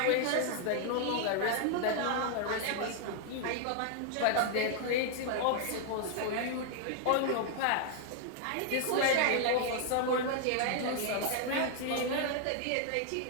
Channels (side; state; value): both; different; correlation 0.00